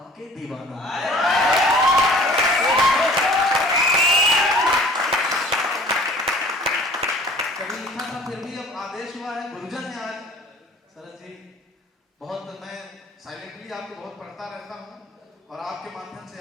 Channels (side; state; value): both; normal; correlation 0.49